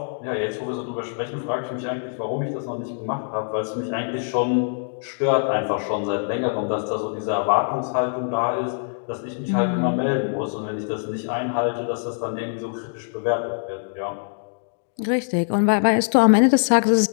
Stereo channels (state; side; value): silent; right; digital silence